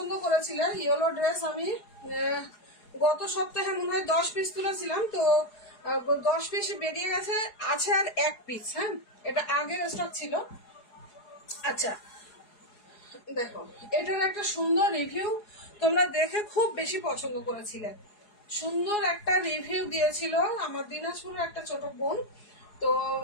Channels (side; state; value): right; late; 4.8 ms